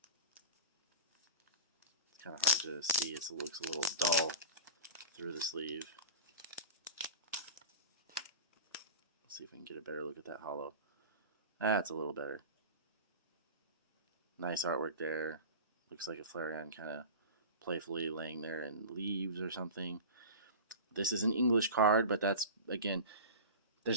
It's kind of hard to see. It looks a little dull through the sleeve. Let's see if we can get a better look at that holo. That's a little better. Nice artwork there. Looks like a Flareon kind of playfully laying there in leaves or something. This is an English card, but that's, again,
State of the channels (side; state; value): both; inverted; correlation -0.30